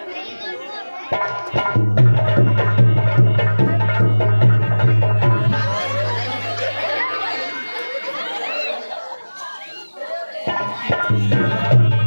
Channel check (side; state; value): both; inverted; correlation -1.00